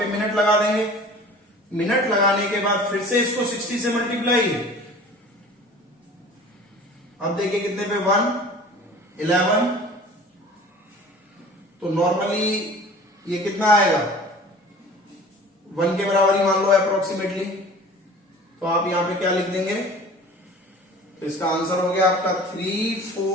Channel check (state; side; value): normal; both; correlation 0.44